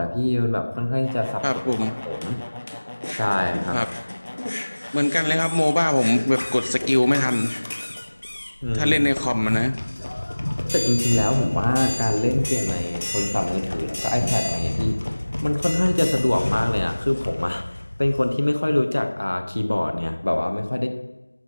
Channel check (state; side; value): inverted; both; correlation -1.00